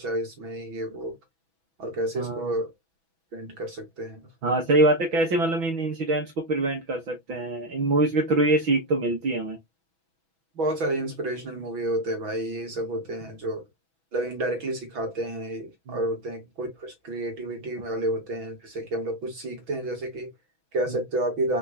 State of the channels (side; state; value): left; late; 6.1 ms